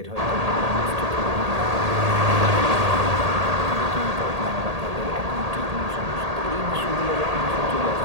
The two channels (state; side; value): late; left; 1.8 ms